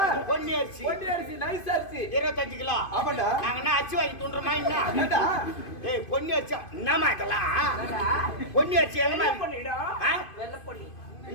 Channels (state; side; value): late; right; 2.5 ms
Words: பொன்னி அரிசி ஒட்டி அரிசி நைஸ் அரிசி 25 கிலோ ஆமாண்டா. நாங்கன்னா அச்சு வாங்கி துண்டுறோமா என்ன ஏண்டா ஏய் பொன்னி அரிசி என்னமா இதெல்லாம் பொன்னி அரிசி என்னமா பண்ணிடும் ஆ? வெள்ளை பொண்ணி.